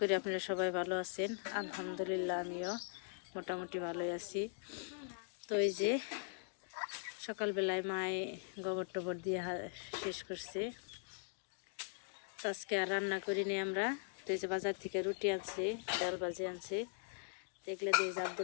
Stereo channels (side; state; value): right; silent; digital silence